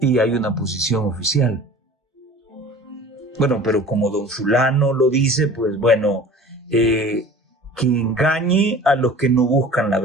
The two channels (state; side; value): normal; both; correlation 0.42